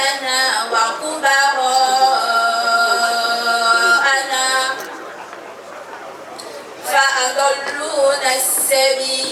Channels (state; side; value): identical; both; correlation 1.00